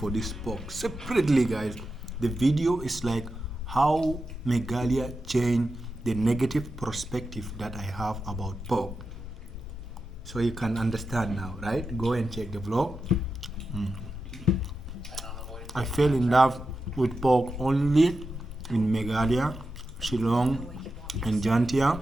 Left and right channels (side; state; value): left; noise; rumble, 14 dB below the sound